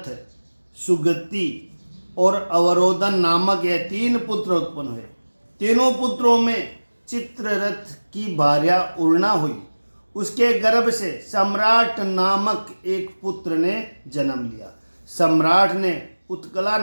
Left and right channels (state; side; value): inverted; both; correlation -1.00